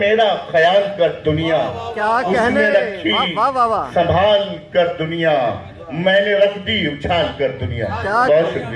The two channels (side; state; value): both; identical; correlation 1.00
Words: ख्याल कर दुनिया। क्या उसने कहने, रखी वाह वाह वाह। संभाल कर दुनिया, मैंने रख दी उछाल कर दुनिया। बहुत